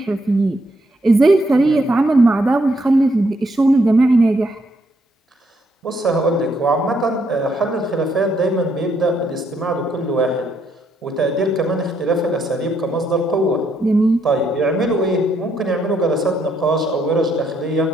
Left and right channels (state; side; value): normal; both; correlation 0.74